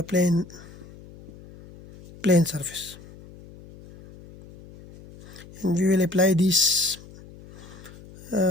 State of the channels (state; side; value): noise; left; hum, 20 dB below the sound